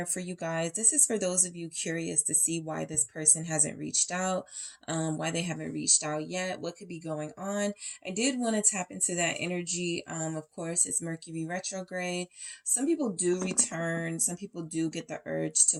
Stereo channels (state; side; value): identical; both; correlation 1.00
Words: for you guys. This is for those of you curious to see why this person hasn't reached out, why they haven't reached out yet, what could be going on. I did want to tap into that energy. Of course, it's Mercury retrograde. Some people do return, some people do get the urge to